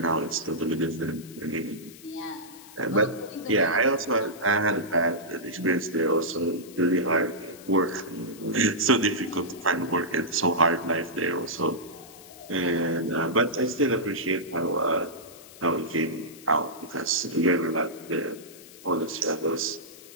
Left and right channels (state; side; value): noise; left; hiss, 19 dB below the sound